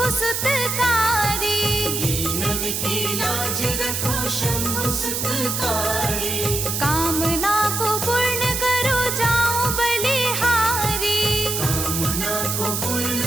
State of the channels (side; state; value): right; noise; hiss, 1 dB below the sound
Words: सुतकारी। दीनन की लाज रखो शंभु सुतकारी। कामना को पूर्ण करो जाओ बलिहारी। कामना को पूर्ण